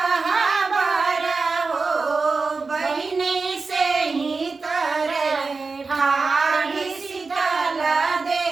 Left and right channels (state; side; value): quieter; left; 4.2 dB